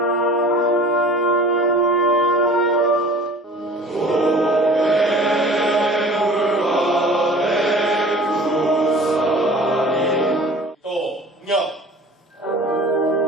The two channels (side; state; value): both; normal; correlation 0.44